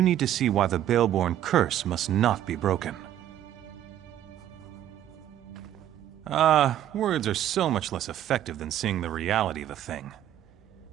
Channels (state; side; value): quieter; left; 11.6 dB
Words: need to see why the Baleborn curse must not be broken. Words are so much less effective than seeing the reality of a thing.